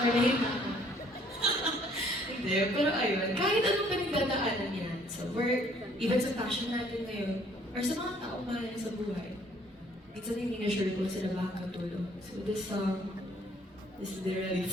na ako. Hindi, pero ayun, kahit anong pinagdadaanan yan, sa work, even sa passion natin ngayon, or sa mga taong mahal niya sa buhay, minsan hindi na sure kung sila makakatulong. So this song is literally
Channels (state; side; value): normal; both; correlation 0.61